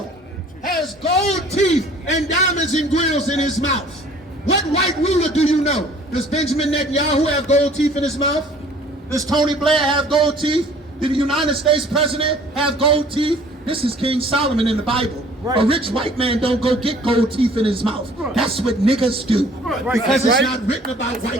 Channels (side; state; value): both; normal; correlation 0.53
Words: has gold teeth and diamonds and grills in his mouth? What white ruler do you know? Does Benjamin Netanyahu have gold teeth in his mouth? Does Tony Blair have gold teeth? Did the United States president have gold teeth? This is King Solomon in the Bible. Right. A rich white man don't go get gold teeth in his mouth. That's what niggas do. Because it's not written about